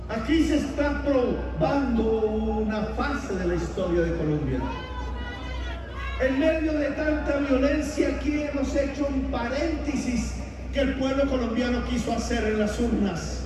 Aquí se está probando una fase de la historia de Colombia. En medio de tanta violencia, aquí hemos hecho un paréntesis que el pueblo colombiano quiso hacer en las urnas.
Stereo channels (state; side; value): identical; both; correlation 1.00